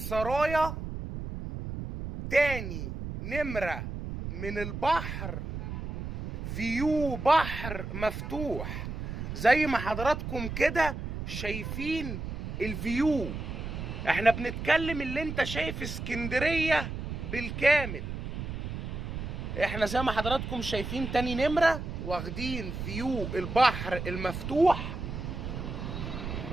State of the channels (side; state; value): right; noise; rumble, 6 dB below the sound